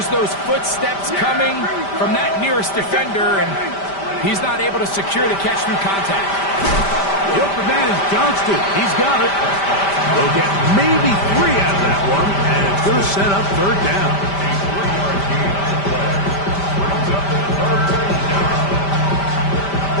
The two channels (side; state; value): right; late; 5.1 ms